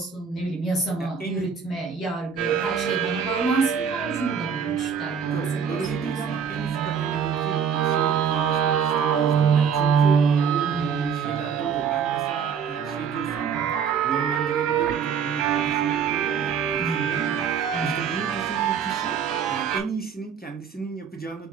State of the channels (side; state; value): left; quieter; 7.0 dB